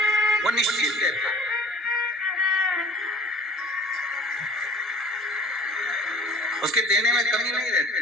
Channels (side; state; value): both; normal; correlation 0.46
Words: वो निश्चित देता है। उसके देने में कमी नहीं रहती,